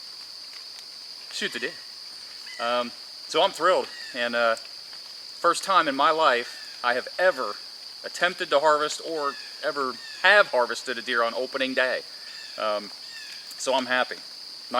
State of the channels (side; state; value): both; identical; correlation 1.00